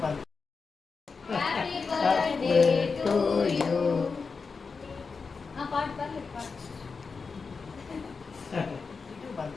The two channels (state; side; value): quieter; right; 4.9 dB